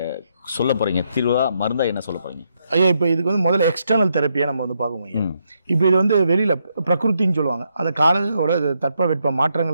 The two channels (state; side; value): inverted; both; correlation -0.79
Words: சொல்ல போகிறீங்க? தீர்வா மருந்தா என்ன சொல்ல போகிறீங்க? ஐயா இப்போ இதுக்கு வந்து முதல்ல எக்ஸ்டர்னல் தெரப்பியாக நம்ம வந்து பார்க்கணும் ஐயா. இப்போ இது வந்து வெளியில் பிரகிருத்தின்னு சொல்லுவாங்க. அந்த காலோட தட்பவெட்ப